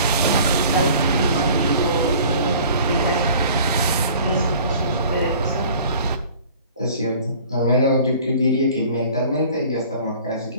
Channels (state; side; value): inverted; both; correlation -0.48